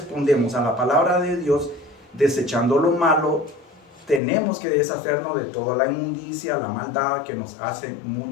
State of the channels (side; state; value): right; drops out; at 4.2 s